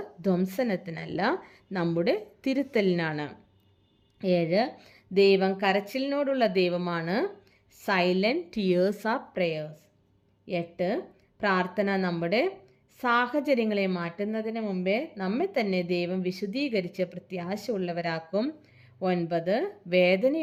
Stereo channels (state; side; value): identical; both; correlation 1.00